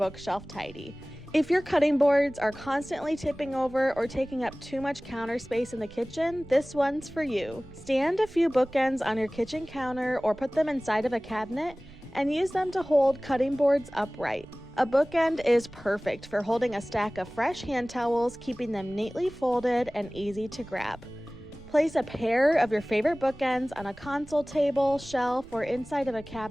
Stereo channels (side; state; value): right; noise; rumble, 22 dB below the sound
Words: tidy. If your cutting boards are constantly tipping over or taking up too much counter space in the kitchen, this one's for you. Stand a few bookends on your kitchen counter or put them inside of a cabinet and use them to hold cutting boards upright. A bookend is perfect for holding a stack of fresh hand towels, keeping them neatly folded and easy to grab. Place a pair of your favorite bookends on a console table, shelf, or inside of a